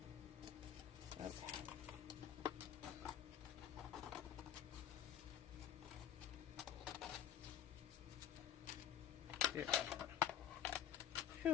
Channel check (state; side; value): quieter; right; 10.3 dB